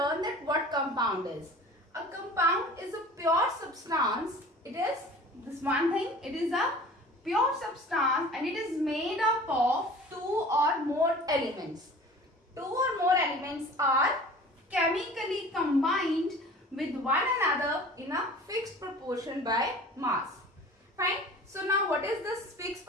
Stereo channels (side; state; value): both; normal; correlation 0.43